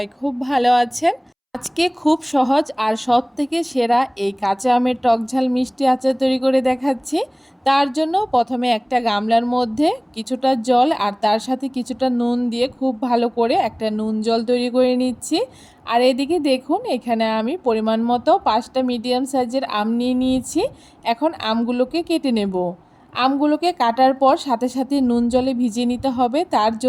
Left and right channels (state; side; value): identical; both; correlation 1.00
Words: খুব ভালো আছেন। আজকে খুব সহজ আর সব থেকে সেরা এই কাঁচা আমের টক ঝাল মিষ্টি আচার তৈরি করে দেখাচ্ছি। তার জন্য প্রথমে একটা গামলার মধ্যে কিছুটা জল আর তার সাথে কিছুটা নুন দিয়ে খুব ভালো করে একটা নুন জল তৈরি করে নিচ্ছি। আর এদিকে দেখুন, এখানে আমি পরিমাণ মতো 5টা মিডিয়াম সাইজের আম নিয়ে নিয়েছি। এখন আমগুলোকে কেটে নেব। আমগুলোকে কাটার পর সাথে সাথে নুন জলে ভিজিয়ে নিতে হবে, তার